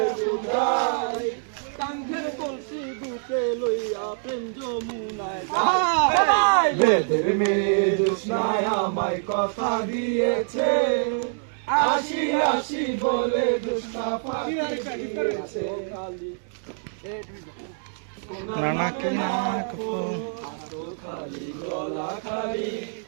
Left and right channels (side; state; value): left; silent; digital silence